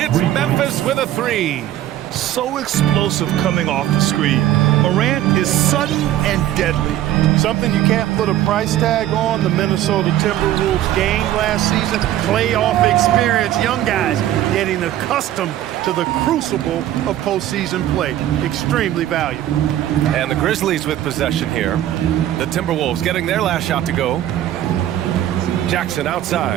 Memphis with a 3. So explosive coming off the screen. Morant is sudden and deadly. Something you can't put a price tag on. The Minnesota Timberwolves gained last season. Playoff experience. Young guys getting accustomed to the crucible of postseason play. Extremely valuable. And the Grizzlies with possession here. The Timberwolves getting their last shot to go. Jackson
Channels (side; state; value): left; quieter; 12.7 dB